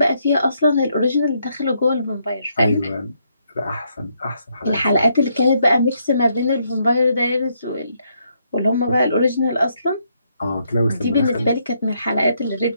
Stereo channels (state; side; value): inverted; both; correlation -0.75